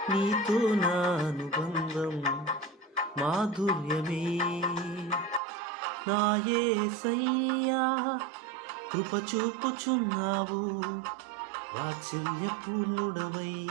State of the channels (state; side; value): drops out; left; at 5.4 s